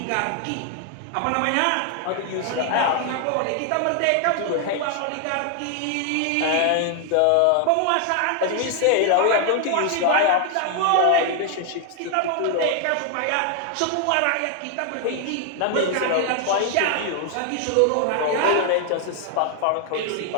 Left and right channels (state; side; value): different; both; correlation 0.00